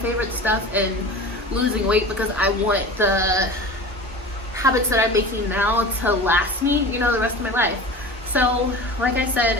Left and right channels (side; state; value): both; normal; correlation 0.35